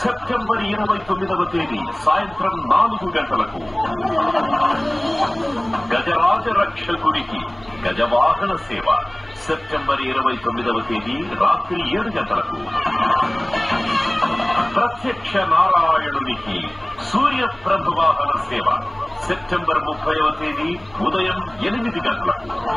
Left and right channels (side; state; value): left; noise; hum, 27 dB below the sound